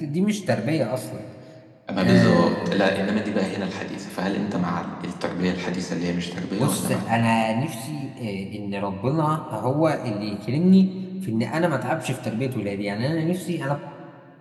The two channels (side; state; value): both; identical; correlation 1.00